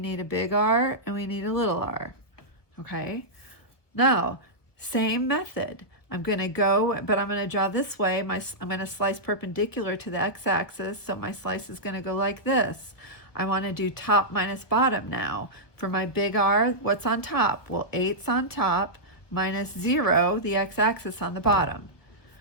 a big R and we need a little r. Okay? Now, same method. I'm going to go, but I'm going to draw this way. I'm going to slice perpendicular to the x-axis, so my slice is going to go like this. I want to do top minus bottom now. For my big R, what's on top? Well, 8's on top minus 0, the x-axis on the bottom.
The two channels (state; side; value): late; right; 1.3 ms